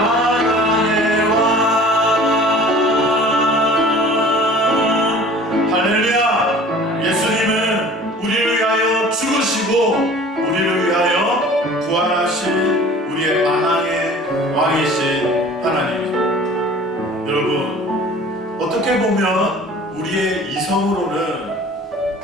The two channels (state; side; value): normal; both; correlation 0.46